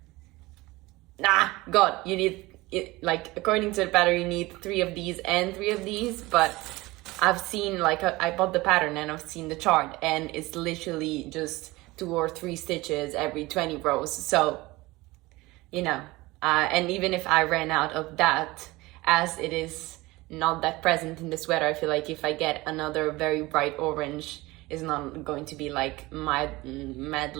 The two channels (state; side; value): quieter; left; 20.7 dB